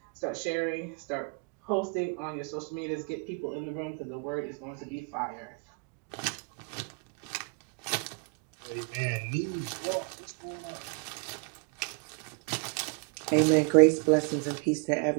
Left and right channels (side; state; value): left; quieter; 32.7 dB